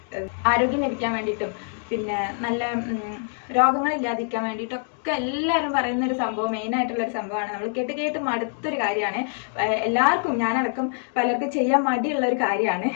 ആരോഗ്യം ലഭിക്കാൻ വേണ്ടിയിട്ടും പിന്നെ നല്ല രോഗങ്ങളില്ലാതിരിക്കാൻ വേണ്ടിയിട്ടൊക്കെ എല്ലാവരും പറയുന്ന ഒരു സംഭവം, മെയിനായിട്ടുള്ളൊരു സംഭവമാണ്. നമ്മൾ കേട്ട് മടുത്തൊരു കാര്യമാണ്. എല്ലാവർക്കും, ഞാനടക്കം പലർക്കും ചെയ്യാൻ മടിയുള്ള ഒരു കാര്യമാണ്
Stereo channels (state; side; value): silent; right; 62 dB below the other